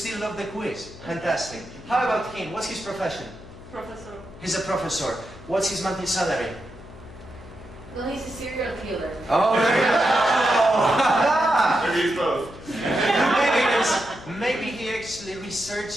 love the quiz. Fantastic. How about him? What's his profession? Professor. He's a professor. What's his monthly salary? Well, he's a serial killer. Oh, there you go. Maybe both. Maybe he actually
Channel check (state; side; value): noise; left; hum, 16 dB below the sound